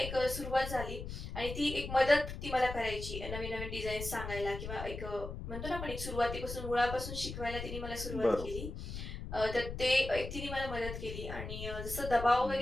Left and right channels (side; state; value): left; noise; rumble, 7 dB below the sound